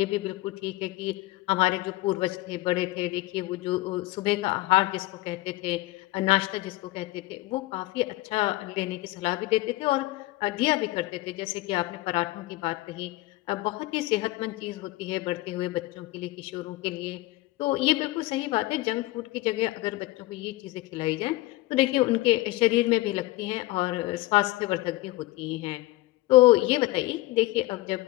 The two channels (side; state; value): right; quieter; 18.8 dB